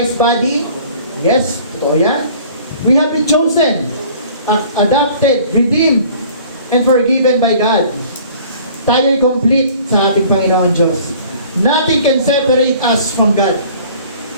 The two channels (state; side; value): inverted; both; correlation -0.51